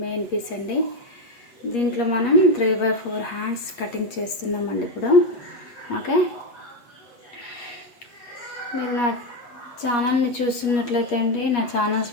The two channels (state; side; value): late; right; 8.4 ms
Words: మెయిన్ పీస్ అండి. దీంట్లో మనం 3/4 హ్యాండ్స్ కటింగ్ చేస్తున్నామండి ఇప్పుడు. ఓకే, మీరు నా ఛానల్ని చూస్తున్నట్లయితే అండి, నా ఛానల్స్